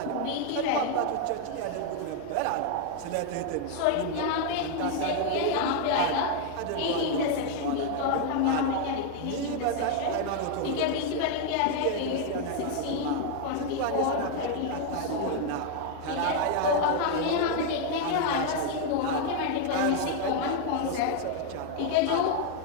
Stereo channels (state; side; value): different; both; correlation 0.00